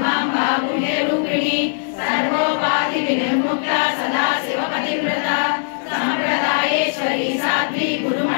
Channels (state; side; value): silent; right; digital silence